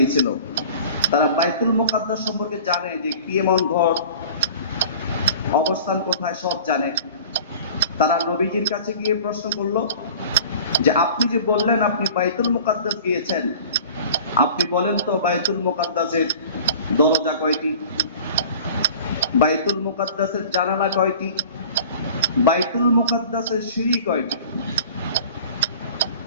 তারা বাইতুল মুকাদ্দাস সম্পর্কে জানে যে কি এমন ঘর, অবস্থান কোথায় সব জানে। তারা নবীজির কাছে গিয়ে প্রশ্ন করলো যে আপনি যে বললেন আপনি বাইতুল মুকাদ্দাস গিয়েছেন, আপনি বলেন তো বাইতুল মুকাদ্দাসের দরজা কয়টি, বাইতুল মুকাদ্দাসের জানালা কয়টি, বাইতুল মুকাদ্দাসের সিঁড়ি কয়টি?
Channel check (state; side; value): inverted; both; correlation -0.43